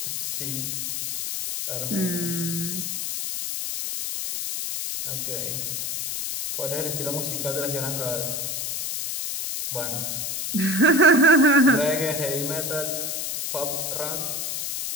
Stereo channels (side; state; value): left; noise; hiss, 3 dB below the sound